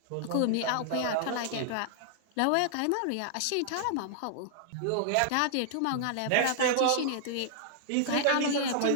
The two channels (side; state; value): both; different; correlation -0.01